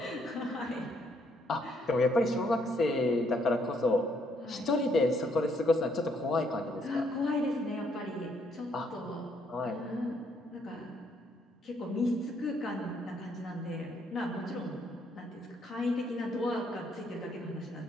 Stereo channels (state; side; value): normal; both; correlation 0.70